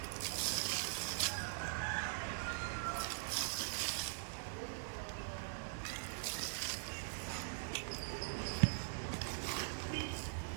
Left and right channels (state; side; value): silent; left; digital silence